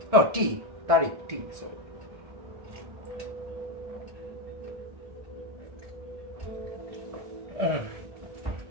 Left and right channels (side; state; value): left; late; 1.7 ms